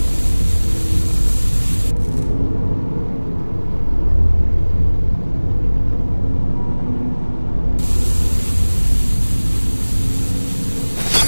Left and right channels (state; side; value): inverted; both; correlation -1.00